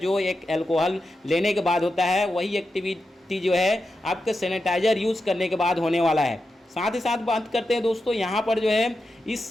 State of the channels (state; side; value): normal; both; correlation 0.89